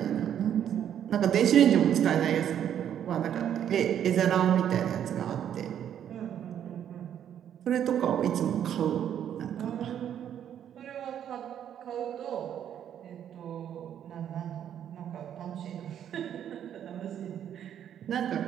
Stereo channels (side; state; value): left; quieter; 9.7 dB